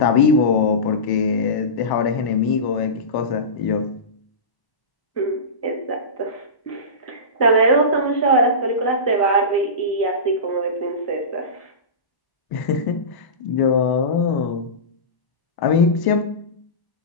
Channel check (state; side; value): late; right; 1.0 ms